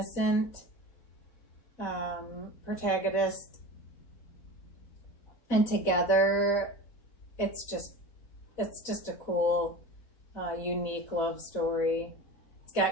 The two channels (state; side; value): late; right; 4.0 ms